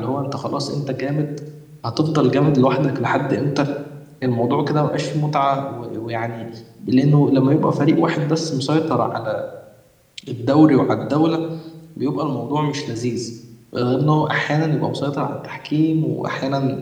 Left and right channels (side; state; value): both; identical; correlation 1.00